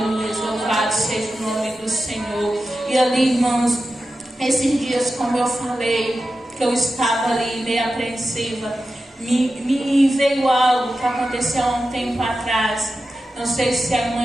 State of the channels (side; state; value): both; normal; correlation 0.92